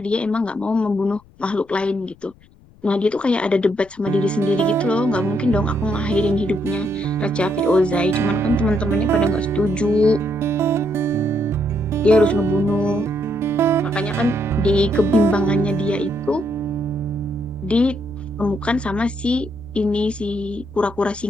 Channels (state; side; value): noise; left; rumble, 27 dB below the sound